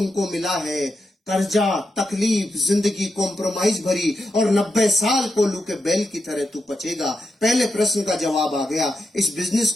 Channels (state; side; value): normal; both; correlation 0.86